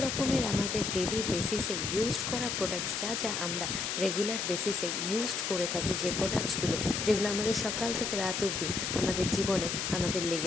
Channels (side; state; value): left; noise; hiss, 1 dB below the sound